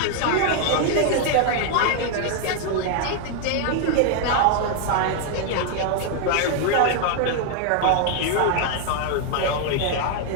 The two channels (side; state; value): both; different; correlation 0.00